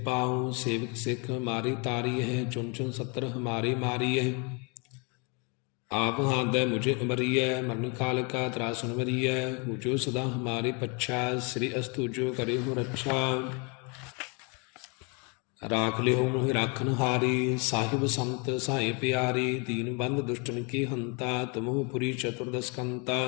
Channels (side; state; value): right; quieter; 32.8 dB